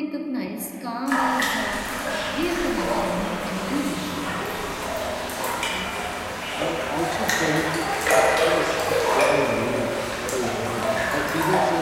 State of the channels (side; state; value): both; identical; correlation 1.00